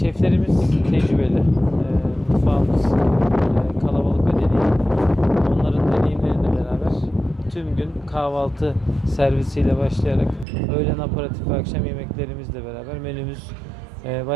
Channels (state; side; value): drops out; left; at 10.5 s